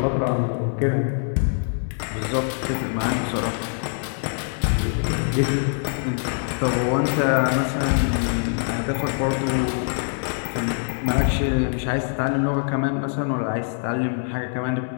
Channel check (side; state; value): right; silent; 63 dB below the other